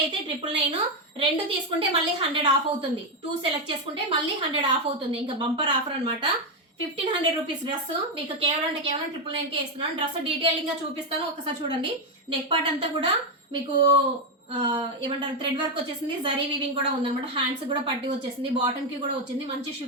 అయితే 999, 2 తీసుకుంటే మళ్ళీ 100 ఆఫ్ అవుతుంది. 2 సెలెక్ట్ చేసుకుంటే మళ్ళీ 100 ఆఫ్ అవుతుంది. ఇంకా బంపర్ ఆఫర్ అనమాట. 1500 రూపీస్ డ్రెస్ మీకు కేవలం 999 కే ఇస్తున్నాను. డ్రెస్ డీటెయిలింగ్ గా చూపిస్తాను, ఒకసారి చూడండి. నెక్ పార్ట్ అంతా కూడా మీకు ఏమంటారు థ్రెడ్ వర్క్ వచ్చేసింది, జరీ వీవింగ్ కూడా ఉందన్నమాట. హ్యాండ్స్ కూడా పట్టి వచ్చేసింది, బాటమ్ కి కూడా వచ్చింది. మంచి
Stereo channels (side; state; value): both; normal; correlation 0.05